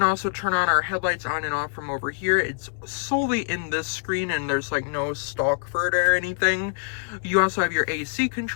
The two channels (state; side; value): silent; right; digital silence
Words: also turn on our headlights on and off from over here. It's solely in this screen, and there's like no stalk for it or anything. You also have your AC